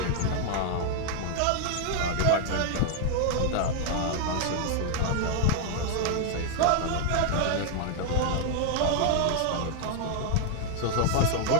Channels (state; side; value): different; both; correlation 0.00